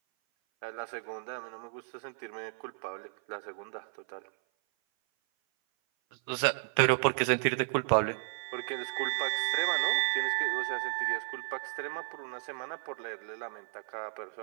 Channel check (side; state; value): left; silent; 56 dB below the other